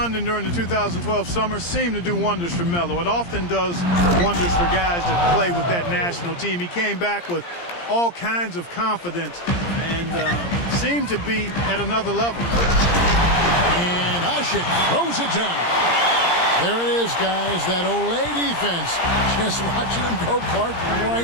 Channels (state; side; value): late; right; 17 ms